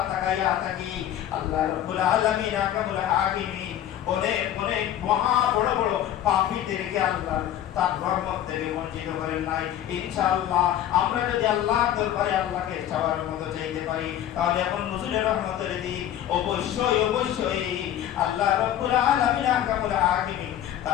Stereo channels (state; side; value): quieter; right; 11.4 dB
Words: তাকাইয়া থাকি। আল্লাহ রাব্বুল আলামিন আহকামুল হাকিমিন অনেক অনেক মহা বড় বড় পাপীদেরকে আল্লাহ তার রহমত থেকে বঞ্চিত করেন নাই। ইনশাআল্লাহ আমরা যদি আল্লাহর দরবারে আল্লাহকে চাওয়ার মতো চাইতে পারি তাহলে এখন নজরুলের রহমতের দিন অবশ্যই আল্লাহ রাব্বুল আলামিন আহকামুল হাকিমিন